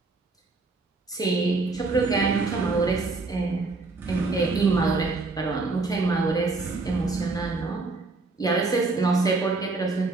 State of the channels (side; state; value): left; quieter; 3.6 dB